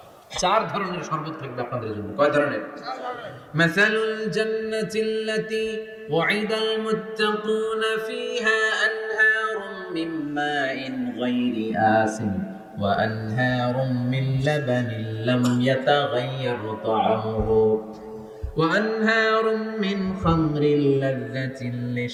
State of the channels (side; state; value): both; identical; correlation 1.00